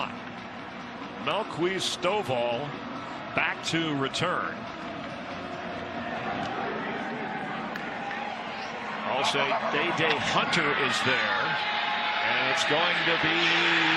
Malquise Stovall back to return. Also, Day Hunter is there, and it's going to be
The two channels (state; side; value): noise; right; hum, 30 dB below the sound